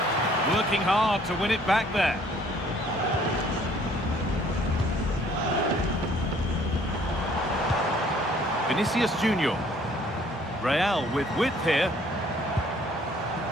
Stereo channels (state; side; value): normal; both; correlation 0.59